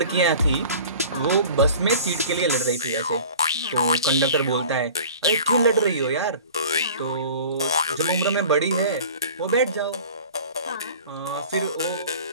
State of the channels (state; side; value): inverted; both; correlation -0.42